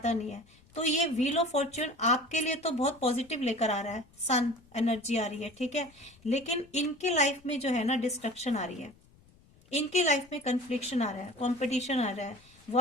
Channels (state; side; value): noise; left; rumble, 28 dB below the sound